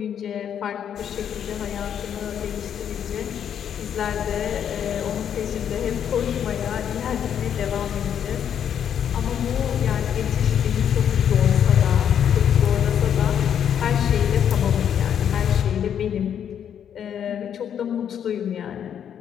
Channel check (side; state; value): right; quieter; 8.9 dB